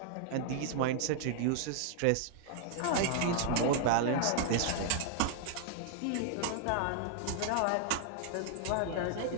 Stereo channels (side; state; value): both; different; correlation 0.00